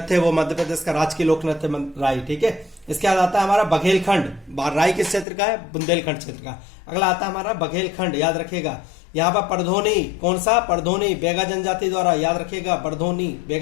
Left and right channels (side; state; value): right; drops out; at 5.2 s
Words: है, वो मध्य प्रदेश का राजकीय लोक नृत्य राय, ठीक है। इसके बाद आता है हमारा बघेलखंड, राई किस क्षेत्र का है, बुंदेलखंड क्षेत्र का। अगला आता है हमारा बघेलखंड, याद रखिएगा। यहाँ पर परधोनी, कौन सा, परधोनी बेगा जनजाति द्वारा, याद रखिएगा, परधोनी